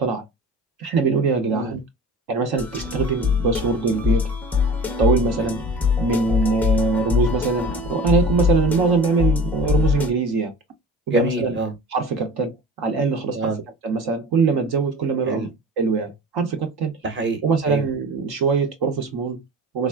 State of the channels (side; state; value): both; normal; correlation 0.39